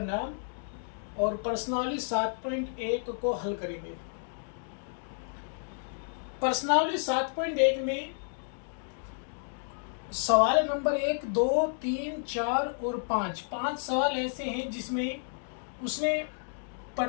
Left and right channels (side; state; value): right; silent; digital silence